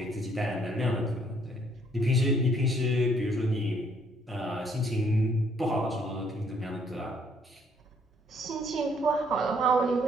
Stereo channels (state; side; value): normal; both; correlation 0.66